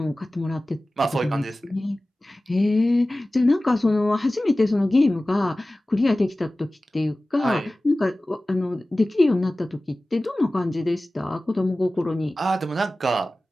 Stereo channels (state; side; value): normal; both; correlation 0.97